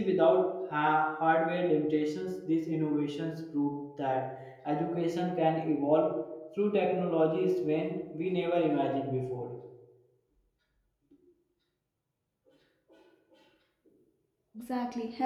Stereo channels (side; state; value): both; identical; correlation 1.00